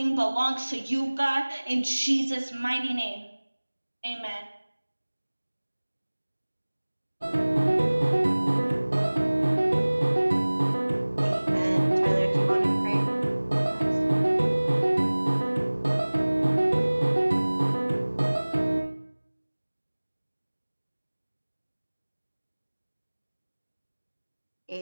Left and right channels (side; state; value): both; inverted; correlation -1.00